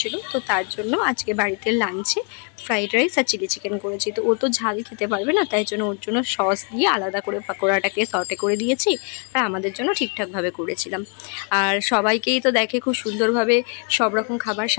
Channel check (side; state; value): right; quieter; 37.5 dB